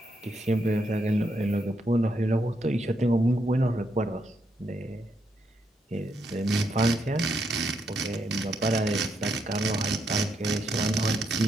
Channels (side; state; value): both; normal; correlation 0.79